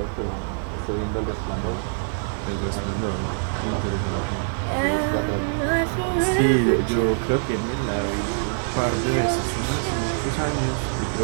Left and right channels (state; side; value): silent; left; 59 dB below the other